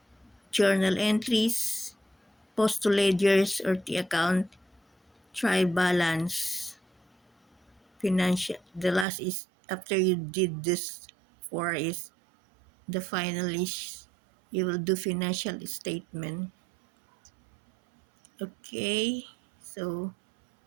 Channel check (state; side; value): drops out; left; at 9.1 s